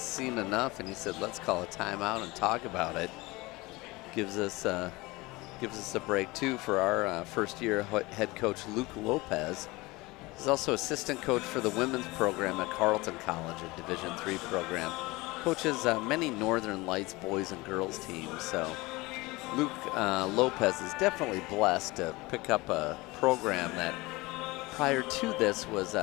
enough, and he said, let's call a timeout and talk about it. Gives us a break, too, for our first-year head coach, Luke Lopez. He's also assistant coach for the women's program at Carleton College, a Division III program. Coaches many Northern Lights boys and girls teams, so Luke Lopez is definitely blessed to pick up a program that prior to this was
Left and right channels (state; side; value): quieter; right; 22.3 dB